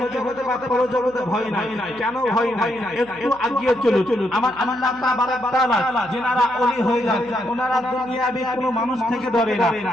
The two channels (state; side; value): noise; right; hum, 24 dB below the sound